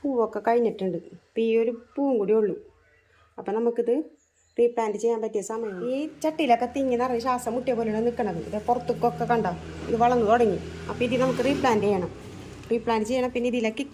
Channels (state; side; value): identical; both; correlation 1.00